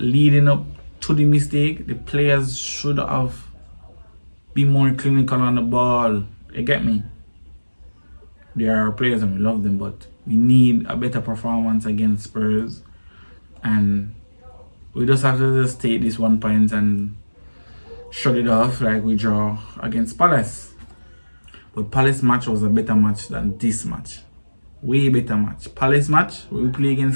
up to the mistake. The players should have been more clinical on the ball. You get me? There are players and we love them, but we need a better performance against Spurs. And we just have to just take this 1 point and shut it off like we draw against Palace. But Palace match was a better match than this match. Way better match. Palace match, where we play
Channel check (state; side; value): inverted; both; correlation -1.00